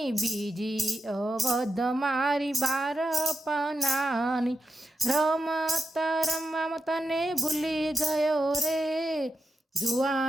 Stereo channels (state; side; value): normal; both; correlation 0.89